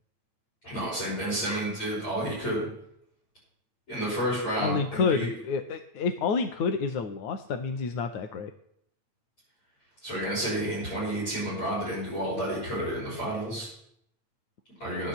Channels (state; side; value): late; right; 8.9 ms